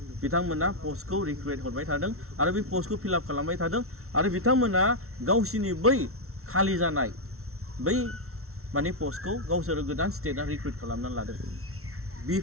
बिथांमोना पस्टखौ रिक्रुट हरबाय थादों आरो बे पस्टखौ फिलआप खालामबाय थादों आरो बिथांमोना गावसिनि बै खालि जानाय बै माने पस्टखौ गावसोरो गोदान स्टेटआ रिक्रुट खालामनानै लादों।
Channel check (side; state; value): left; late; 0.63 ms